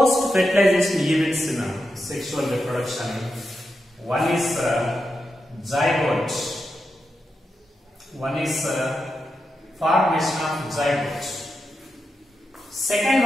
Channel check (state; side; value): normal; both; correlation 0.87